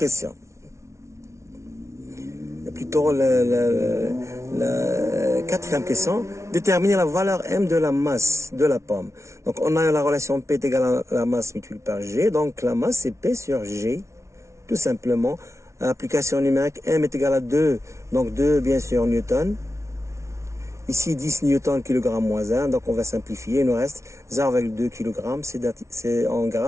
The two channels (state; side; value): late; left; 0.14 ms